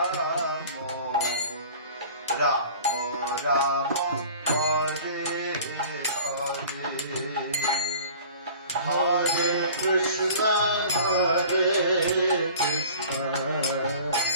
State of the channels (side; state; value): both; inverted; correlation -0.44